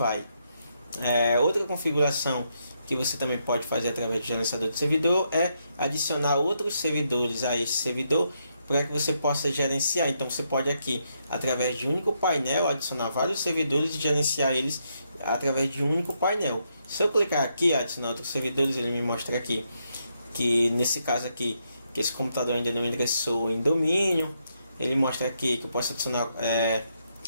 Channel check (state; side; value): inverted; both; correlation -0.79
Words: Outra configuração que você também pode fazer através do gerenciador de servidor é adicionar outros servidores a esse servidor para que você possa gerenciar. Então você pode aqui, através de um único painel, adicionar vários servidores e gerenciar eles através de um único painel. Se eu clicar aqui, adicionar outros servidores, ele me mostra aqui que nesse caso aqui, que esse computador ainda não ingressou em domínio. Ele mostra aqui que eu posso adicionar